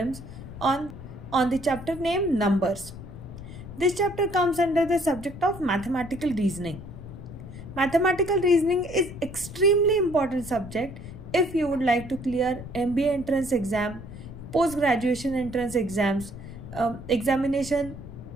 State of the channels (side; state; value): left; noise; rumble, 13 dB below the sound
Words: on the chapter named Numbers. This chapter comes under the subject of mathematical reasoning. Mathematical reasoning is extremely important subject if you would like to clear MBA entrance exam, post-graduation entrance exams, examination